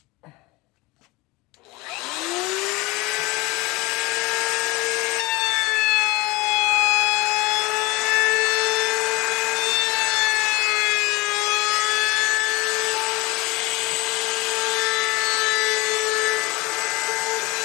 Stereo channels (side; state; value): right; quieter; 21.8 dB